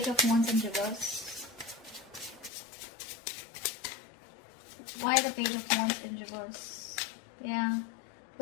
of Wands in reverse? Why the Page of Wands in reverse? Yeah.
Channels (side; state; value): right; drops out; at 2.5 s